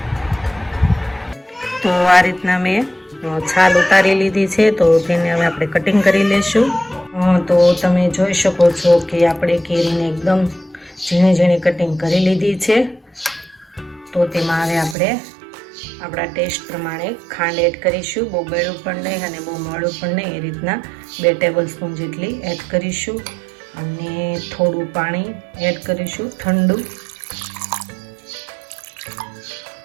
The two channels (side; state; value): left; drops out; at 15.0 s